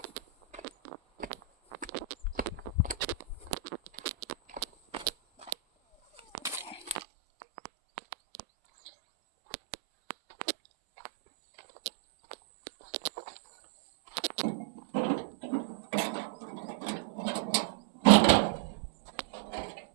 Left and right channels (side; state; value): left; drops out; at 7.0 s